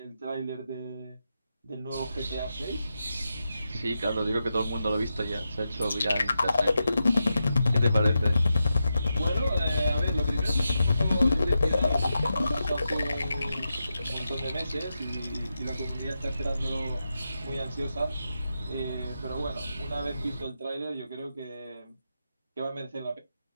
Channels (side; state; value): both; inverted; correlation -0.88